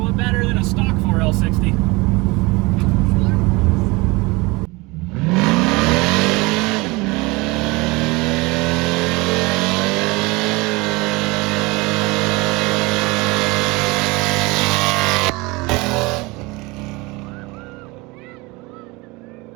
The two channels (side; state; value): left; quieter; 24.3 dB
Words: bit better than a stock 4L60.